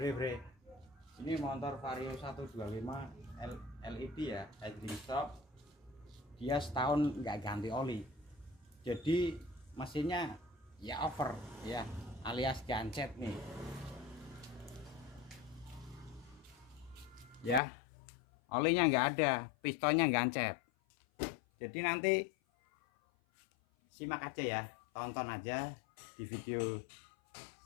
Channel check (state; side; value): drops out; right; at 17.6 s